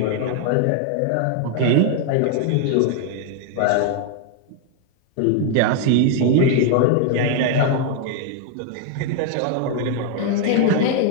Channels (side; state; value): both; different; correlation 0.00